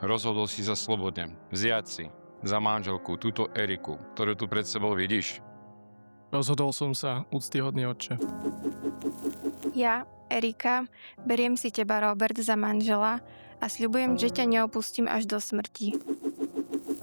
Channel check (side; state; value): both; inverted; correlation -1.00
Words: rozhodol si sa slobodne vziať si za manželku túto Eriku, ktorú tu pred sebou vidíš. Rozhodol som sa, úctyhodný otče. Ja, Erika, beriem si teba, Robert, za manžela a sľubujem, že ťa neopustím až do smrti.